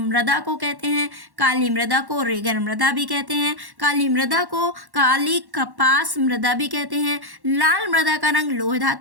को कहते हैं। काली मृदा को रेगन मृदा भी कहते हैं। काली मृदा को काली कपास मृदा भी कहते हैं। लाल मृदा का रंग लोह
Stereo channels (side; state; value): left; late; 1.1 ms